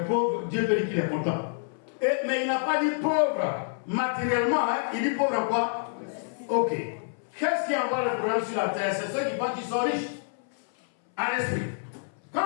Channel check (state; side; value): silent; right; 60 dB below the other